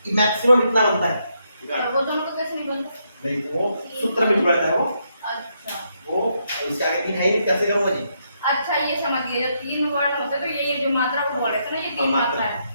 मैक्सिमम इतना बनता है वो दोनों का कैसे नहीं बनता नहीं वो सूत्र में जुड़ा है वो अच्छा वो इसके आगे तीन है ही नहीं कैसे करूँगा जी अच्छा ये समझ गए जब तीन वर्ण होते हैं तो ये जो मात्रा को बोल रहे थे ना ये तीन मात्रा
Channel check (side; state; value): both; inverted; correlation -0.78